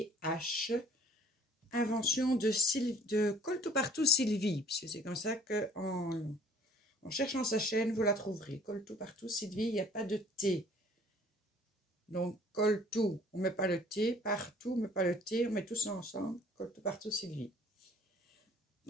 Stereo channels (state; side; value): normal; both; correlation 0.55